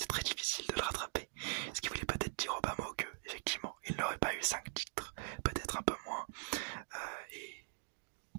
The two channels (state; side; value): silent; left; digital silence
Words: difficile de le rattraper. Ce qui voulait peut-être dire au bas mot que, effectivement, il n'aurait pas eu 5 titres, peut-être un peu moins. Et